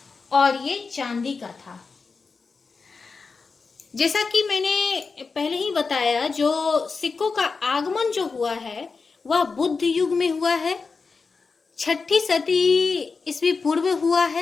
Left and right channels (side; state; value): right; quieter; 4.6 dB